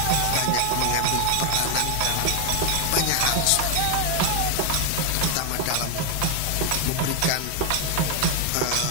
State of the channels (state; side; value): different; both; correlation 0.01